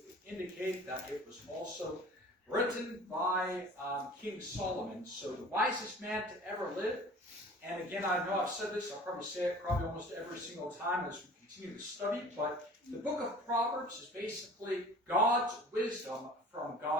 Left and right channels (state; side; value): normal; both; correlation 0.45